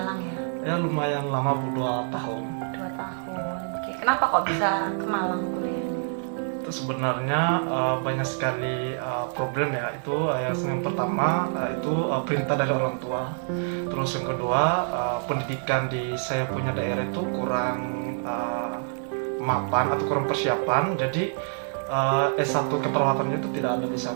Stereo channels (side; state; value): left; silent; 56 dB below the other